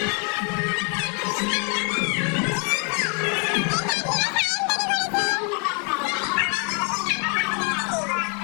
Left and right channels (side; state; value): right; quieter; 36.1 dB